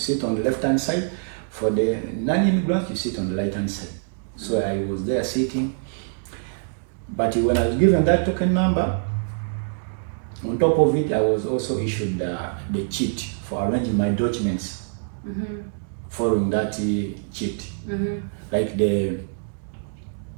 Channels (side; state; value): left; silent; digital silence